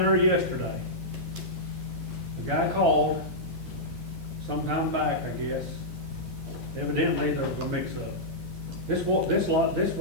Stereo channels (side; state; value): both; normal; correlation -0.10